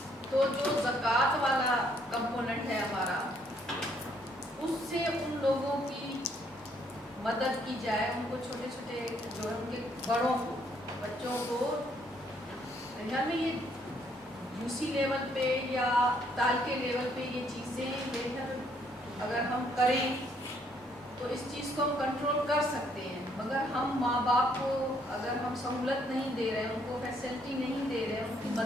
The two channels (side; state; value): both; normal; correlation 0.68